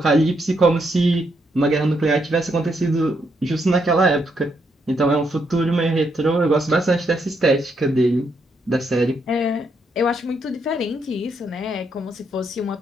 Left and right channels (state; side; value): normal; both; correlation 0.77